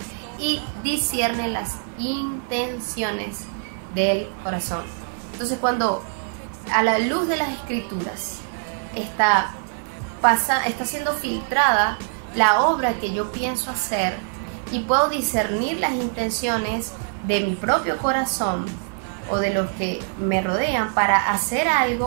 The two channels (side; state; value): left; silent; digital silence